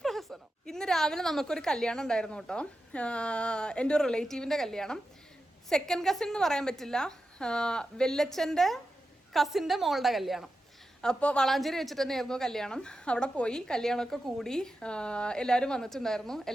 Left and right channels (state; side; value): normal; both; correlation 0.91